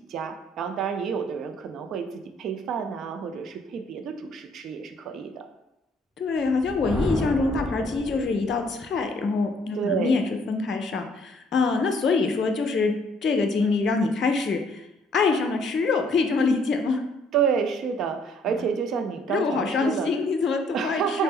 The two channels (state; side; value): normal; both; correlation 0.63